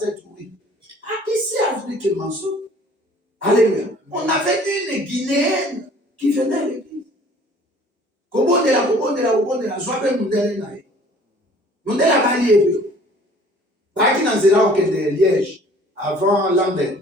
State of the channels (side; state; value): both; normal; correlation 0.52